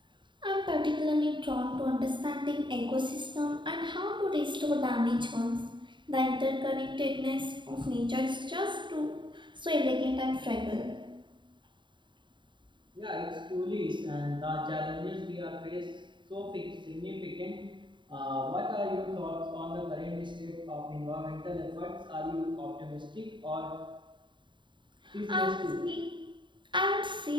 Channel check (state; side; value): late; left; 0.23 ms